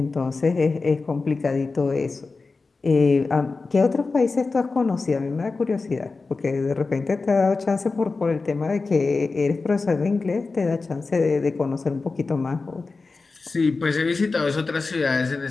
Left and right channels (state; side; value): quieter; right; 4.0 dB